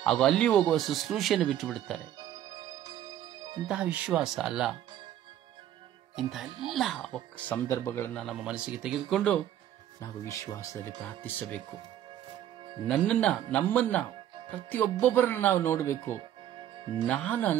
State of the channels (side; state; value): left; quieter; 11.4 dB